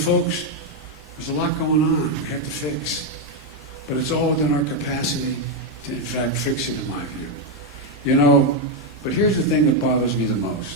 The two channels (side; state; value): both; normal; correlation 0.03